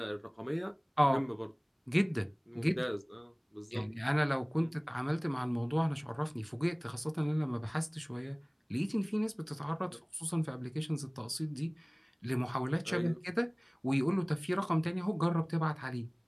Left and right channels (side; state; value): both; identical; correlation 1.00